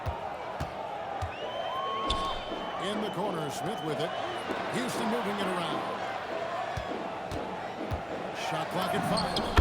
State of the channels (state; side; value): identical; both; correlation 1.00